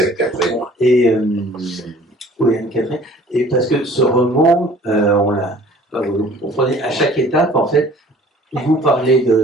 Catherine? Et, oui, Anne-Catherine. Et parce que ce roman, vous comprenez, à chaque étape, en fait, vous parlez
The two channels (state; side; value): normal; both; correlation 0.51